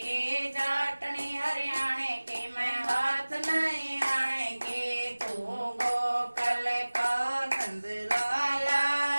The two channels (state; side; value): inverted; both; correlation -1.00